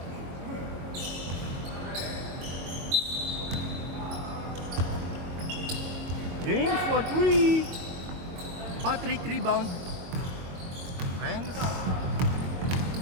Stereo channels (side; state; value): left; late; 22 ms